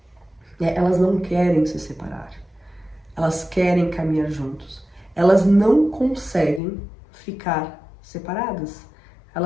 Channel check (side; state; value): right; drops out; at 6.6 s